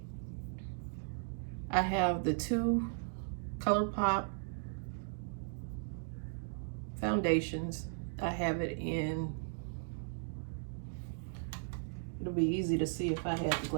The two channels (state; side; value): silent; left; digital silence